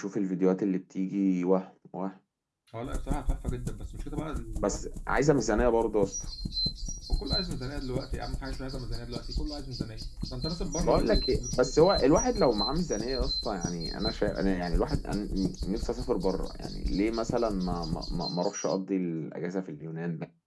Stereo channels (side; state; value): both; identical; correlation 1.00